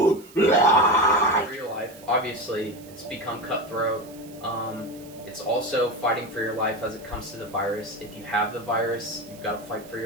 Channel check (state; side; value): noise; right; hiss, 22 dB below the sound